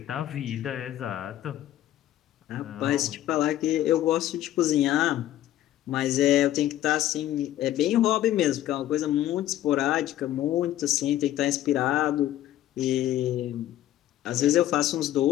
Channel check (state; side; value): quieter; right; 13.3 dB